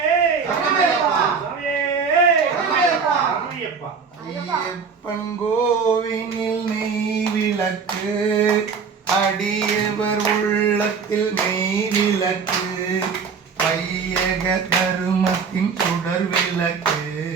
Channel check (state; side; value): quieter; left; 5.7 dB